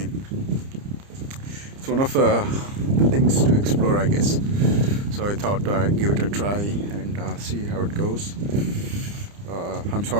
it's one of the things to explore, I guess. So I thought I'd give it a try and see how it goes. I'm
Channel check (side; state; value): left; late; 30 ms